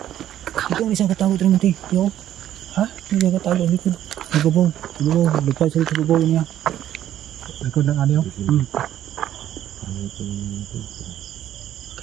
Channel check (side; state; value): left; quieter; 11.8 dB